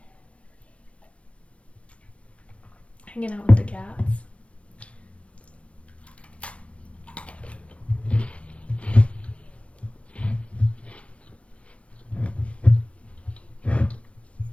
hanging out with the cats.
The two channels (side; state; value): right; late; 0.062 ms